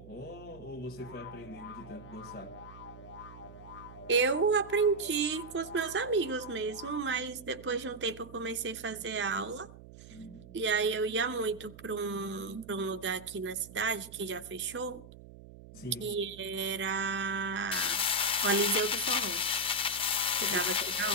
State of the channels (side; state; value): right; noise; hum, 17 dB below the sound